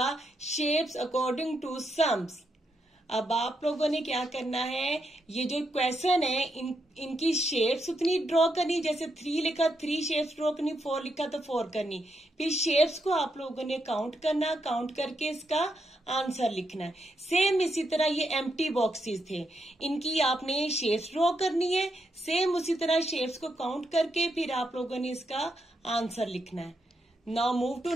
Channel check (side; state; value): both; normal; correlation 0.81